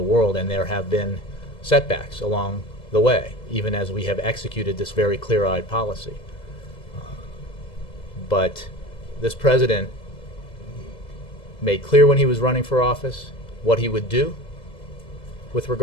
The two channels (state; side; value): late; right; 2.0 ms